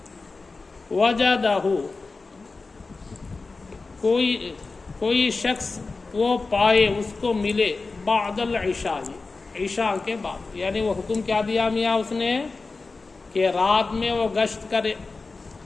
وجدہ کوئی شخص وہ پائے، اس کو ملے، بعد العشاء عشاء کے بعد، یعنی وہ حکم کیا دیا میاں اس نے کہ رات میں وہ گشت کرے،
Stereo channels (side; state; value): right; quieter; 3.9 dB